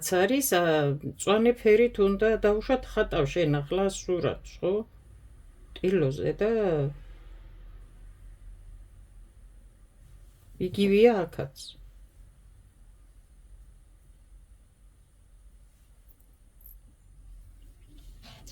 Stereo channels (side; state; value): both; identical; correlation 1.00